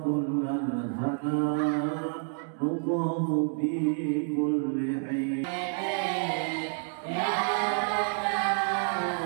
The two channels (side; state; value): left; silent; 56 dB below the other